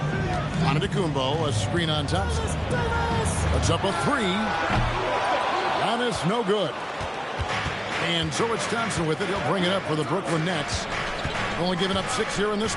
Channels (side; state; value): both; identical; correlation 1.00